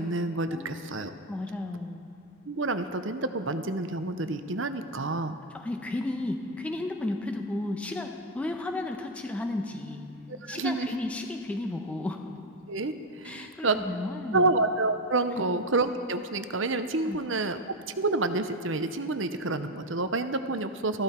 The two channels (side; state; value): both; normal; correlation 0.10